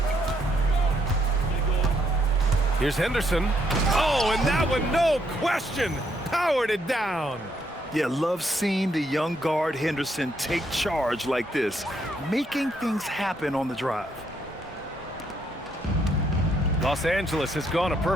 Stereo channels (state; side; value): normal; both; correlation 0.73